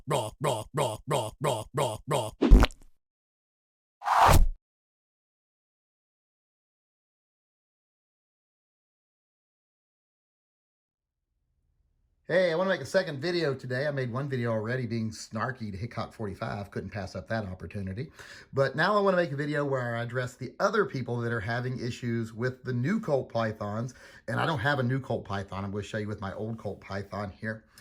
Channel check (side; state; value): both; identical; correlation 1.00